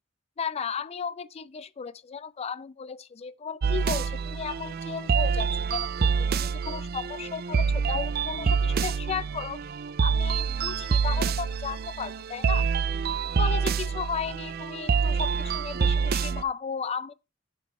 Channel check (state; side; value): quieter; left; 3.4 dB